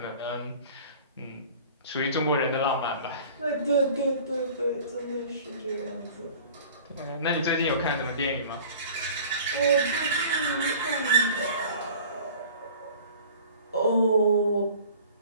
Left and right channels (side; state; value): both; inverted; correlation -0.46